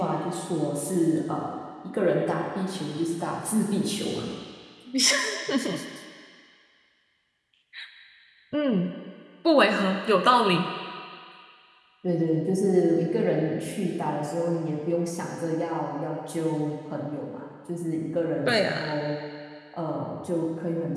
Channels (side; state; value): both; identical; correlation 1.00